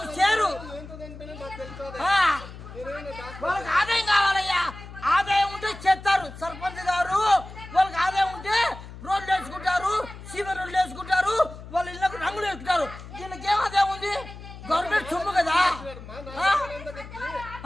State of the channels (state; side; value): noise; left; hum, 14 dB below the sound